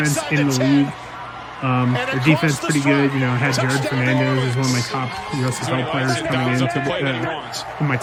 in the league. Their defense pretty good. Had Jared Fernandez as one of my top USFL players coming into my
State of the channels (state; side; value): identical; both; correlation 1.00